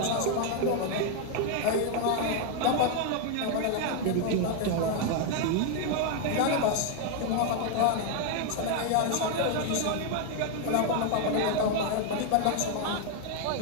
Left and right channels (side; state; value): both; different; correlation 0.01